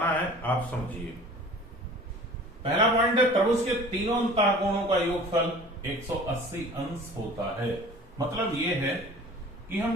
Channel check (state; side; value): normal; both; correlation 0.44